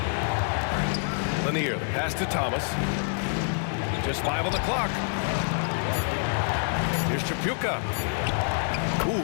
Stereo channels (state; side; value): silent; right; 60 dB below the other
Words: Lanier, the pass to Thomas. Just 5 on the clock. Here's Chapuka. Ooh,